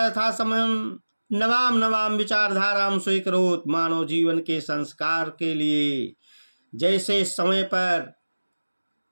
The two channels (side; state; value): both; inverted; correlation -1.00